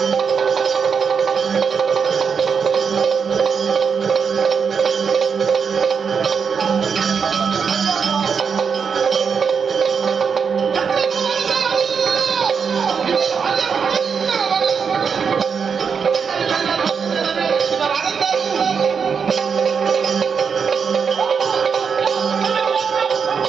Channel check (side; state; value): left; quieter; 6.2 dB